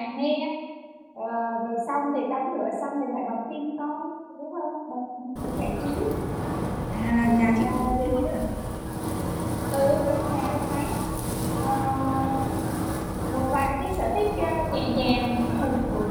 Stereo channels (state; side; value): identical; both; correlation 1.00